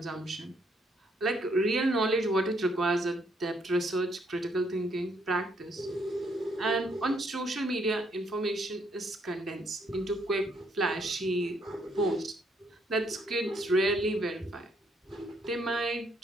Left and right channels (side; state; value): both; normal; correlation 0.71